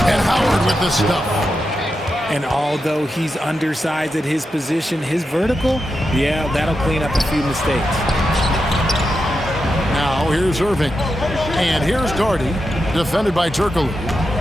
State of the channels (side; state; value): both; normal; correlation 0.88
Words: Howard with the stuff. And although he's undersized at his position, his vertical, yeah, that'll clean up a few mistakes. Now here's Irving. And here's Daugherty, defended by Turkoglu.